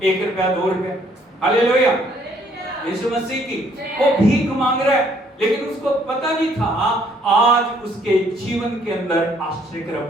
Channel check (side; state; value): both; normal; correlation 0.65